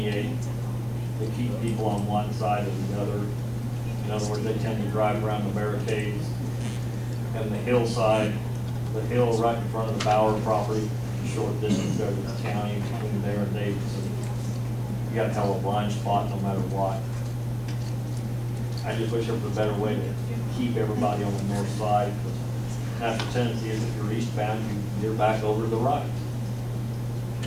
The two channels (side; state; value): both; identical; correlation 1.00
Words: to keep people on one side or the other. In other words, they tend to drive around the barricades. And the hillside, the hill right in front of the Bauer property, short distance there to the county between there and Davidson. You got to have a blind spot no matter what. I just wish there was a better way to keep everybody on the north side. Natural tendency is if you're eastbound, you're back over to the right.